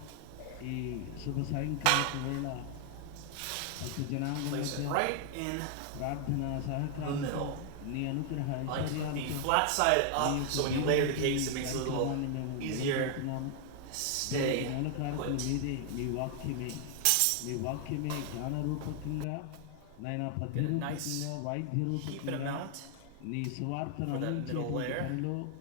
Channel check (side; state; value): both; different; correlation 0.00